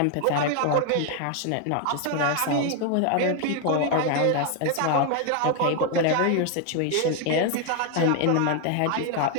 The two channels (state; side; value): different; both; correlation 0.01